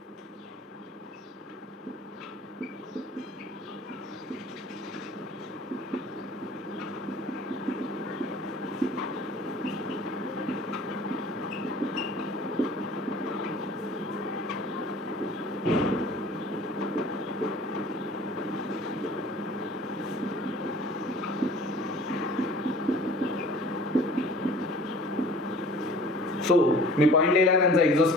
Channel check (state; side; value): normal; both; correlation 0.47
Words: So मी point लिहिला, त्यांचं